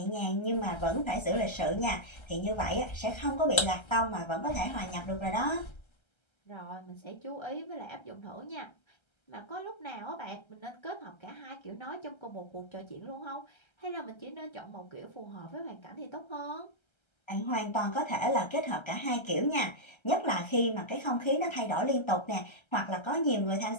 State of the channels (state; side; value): late; right; 1.3 ms